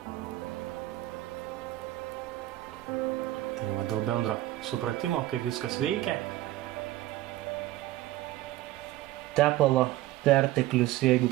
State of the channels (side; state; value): left; quieter; 15.7 dB